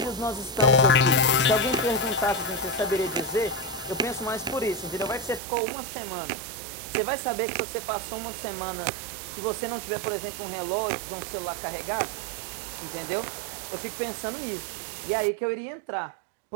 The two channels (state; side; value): drops out; left; at 5.4 s